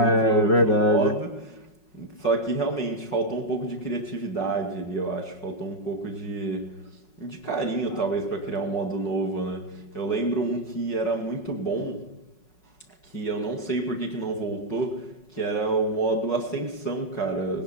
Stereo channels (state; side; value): late; right; 5.4 ms